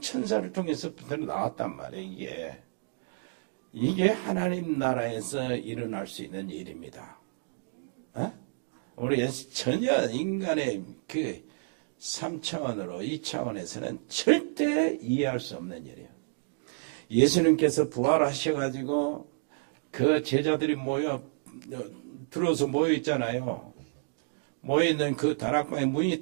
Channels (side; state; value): left; silent; digital silence